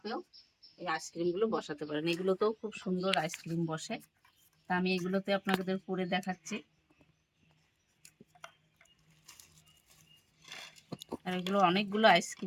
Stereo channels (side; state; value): both; identical; correlation 1.00